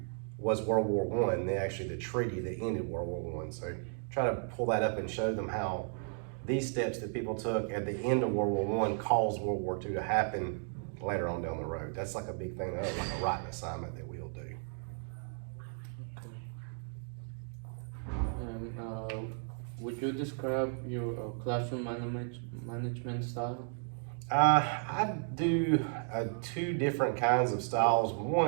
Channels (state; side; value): silent; left; 55 dB below the other